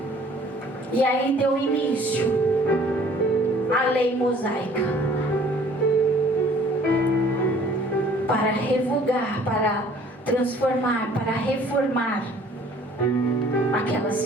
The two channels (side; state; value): both; normal; correlation 0.54